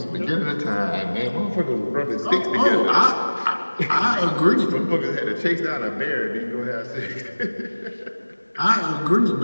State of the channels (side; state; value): both; inverted; correlation -1.00